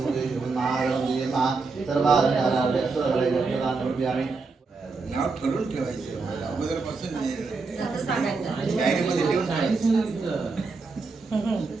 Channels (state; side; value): quieter; left; 4.2 dB